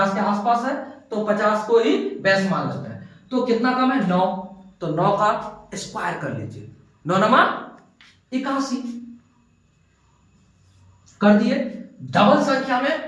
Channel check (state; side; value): identical; both; correlation 1.00